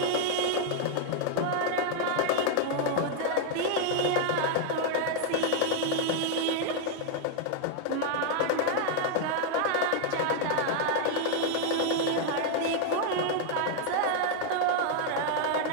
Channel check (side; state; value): both; different; correlation 0.00